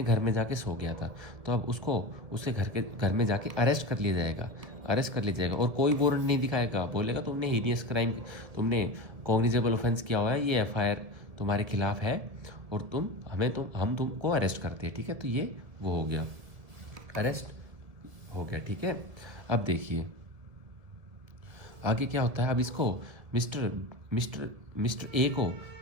घर में जाके सो गया था, तो अब उसको उसके घर में जाके अरेस्ट कर लिया जाएगा। और कोई वारंट नहीं दिखाएगा, बोलेगा तुमने हीनियस क्राइम, तुमने कॉग्निजेबल ऑफेंस किया हुआ है, ये एफआईआर तुम्हारे खिलाफ है और हम तुमको अरेस्ट करते हैं, ठीक है। तो ये वो हो गया, अरेस्ट हो गया, ठीक है। अब देखिए आगे क्या होता है। अब इसको मिस्टर ए को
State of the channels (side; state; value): left; late; 1.7 ms